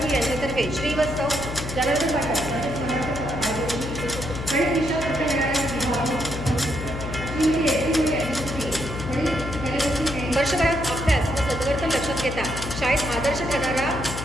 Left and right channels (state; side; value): noise; left; hum, 7 dB below the sound